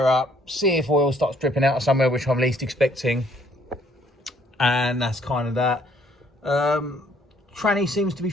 up, see if oil starts dripping out of somewhere, which I'm least expecting. And that's kind of that. Tranny seems to be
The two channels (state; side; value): normal; both; correlation 0.63